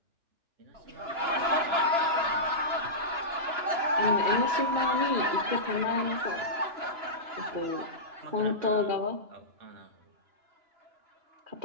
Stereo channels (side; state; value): left; late; 2.9 ms